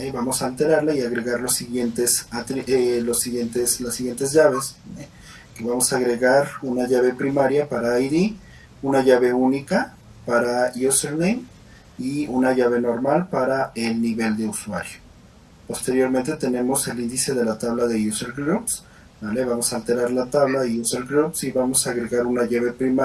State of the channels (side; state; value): both; identical; correlation 1.00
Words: Vamos a alterarla y agregar las siguientes llaves. ¿Vale? Que vamos a agregar una llave primaria para ID, una llave única para username y una llave normal para el nivel de usuario. Posteriormente tenemos el índice de la tabla de user groups. ¿Vale? Vamos a alterar la tabla de user groups y vamos a agregar una llave